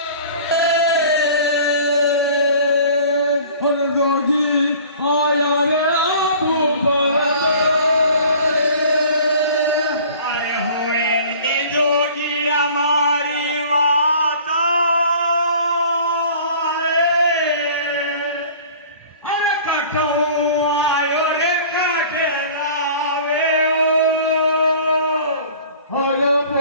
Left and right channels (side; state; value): both; inverted; correlation -0.47